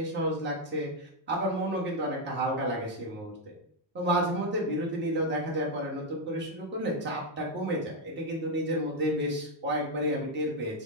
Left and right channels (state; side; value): normal; both; correlation 0.02